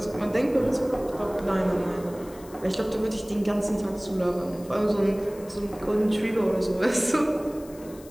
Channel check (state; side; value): noise; left; hiss, 22 dB below the sound